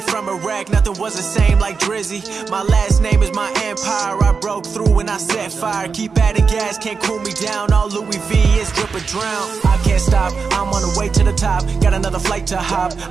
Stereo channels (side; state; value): left; quieter; 5.2 dB